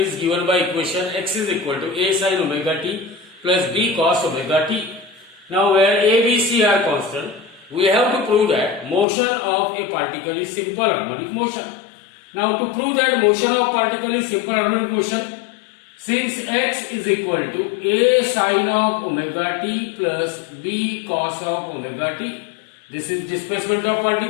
given by equation x is equal to a sin omega t plus b cos omega t. Now where a, b, c are constant, we have to prove that motion of a particle is simple harmonic motion. Now to prove that motion of particle is simple harmonic motion, since x is equal to a sin of omega t plus b cos of omega t, this is displacement of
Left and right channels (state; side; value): drops out; right; at 9.1 s